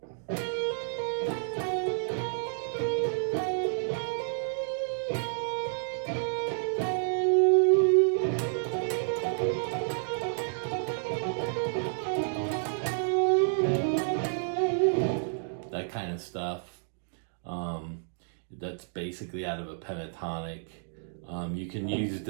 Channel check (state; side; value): silent; left; digital silence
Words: That kind of stuff. That's basically out of a pentatonic. You can use